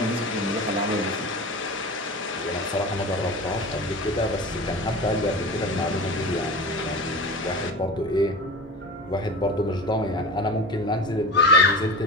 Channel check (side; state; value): both; normal; correlation 0.31